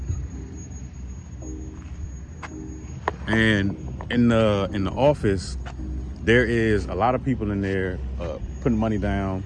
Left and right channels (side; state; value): both; identical; correlation 1.00